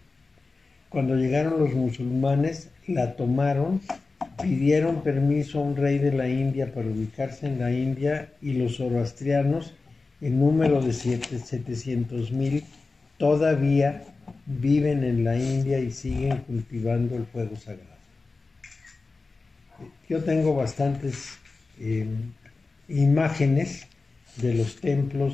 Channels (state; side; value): quieter; right; 3.8 dB